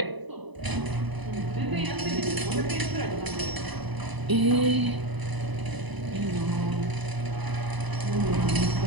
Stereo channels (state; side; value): late; left; 1.0 ms